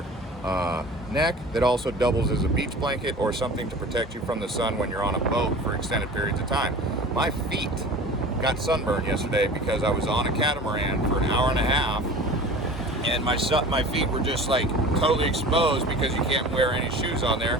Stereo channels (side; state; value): both; normal; correlation 0.39